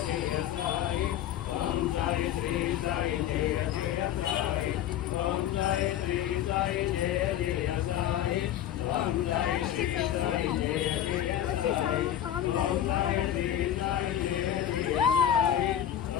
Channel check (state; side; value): quieter; right; 10.9 dB